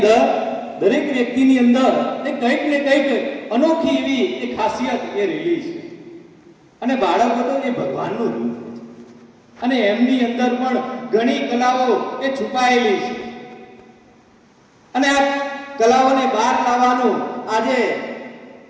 દરેક વ્યક્તિની અંદર કંઈક ને કંઈક અનોખી એવી એક ખાસિયત એ રહેલી છે. અને બાળકો તો એ ભગવાનનું રૂપ છે અને એમની અંદર પણ ઘણી કલાઓ એ છુપાયેલી છે. અને આ કલાઓને બહાર લાવવાનું આજે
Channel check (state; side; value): identical; both; correlation 1.00